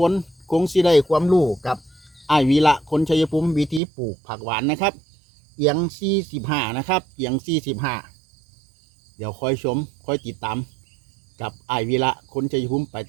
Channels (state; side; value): drops out; left; at 3.8 s